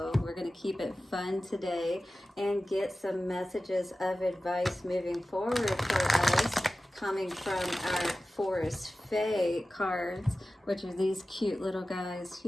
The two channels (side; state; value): both; normal; correlation 0.95